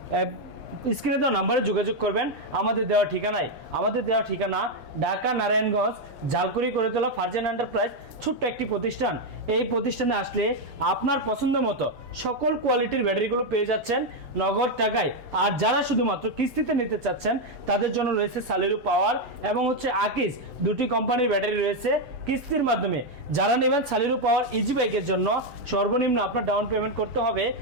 স্ক্রিনে দেওয়া নাম্বারে যোগাযোগ করবেন। আমাদের দেওয়া ঠিকানায়, আমাদের দেওয়া ঠিকানা ঢাকা নারায়ণগঞ্জ ঝালকুড়ি করে তোলা ফারজানা এন্টারপ্রাইজ, ছোট্ট একটি প্রতিষ্ঠান। এই প্রতিষ্ঠানে আসলে আপনার পছন্দ মতো সকল কোয়ালিটির ব্যাটারিগুলো পেয়ে যাচ্ছেন নগদ টাকায়। আর যারা শুধুমাত্র কিস্তিতে নিতে চাচ্ছেন তাদের জন্য রয়েছে সালিরু পাওয়ার এবং হচ্ছে আকিস, দুটি কোম্পানির ব্যাটারি রয়েছে কিস্তির মাধ্যমে। যারা নেবেন সালিরু পাওয়ার ইজি বাইকের জন্য সর্বনিম্ন আপনার ডাউন পেমেন্ট করতে হবে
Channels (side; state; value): left; late; 6.9 ms